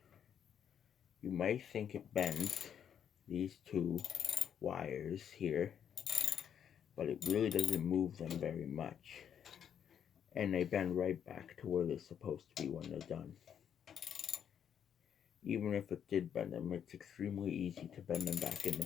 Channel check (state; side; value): quieter; right; 8.7 dB